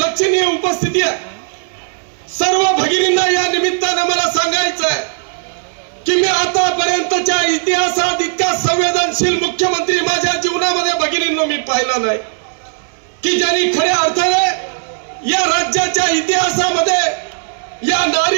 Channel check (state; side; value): silent; left; 62 dB below the other